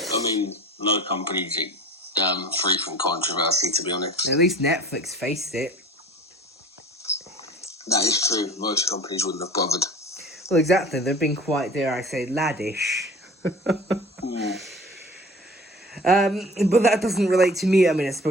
I mean, no company's free from controversy, to be honest. At least Netflix faced it. That is true. Most companies wouldn't have bothered. Well, exactly. They've been quite, dare I say, laddish. But that doesn't relate to me. I mean, I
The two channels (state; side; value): normal; both; correlation 0.42